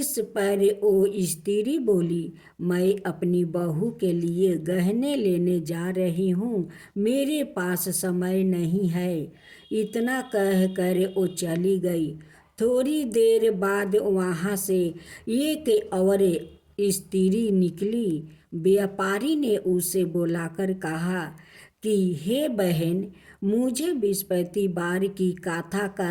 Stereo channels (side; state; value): both; identical; correlation 1.00